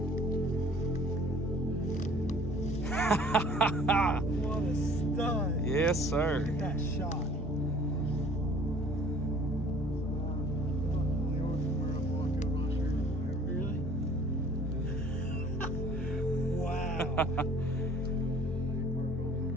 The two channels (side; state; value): both; normal; correlation 0.52